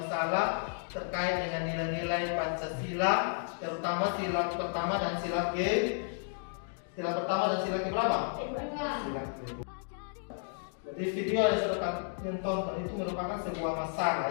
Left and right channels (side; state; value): right; silent; digital silence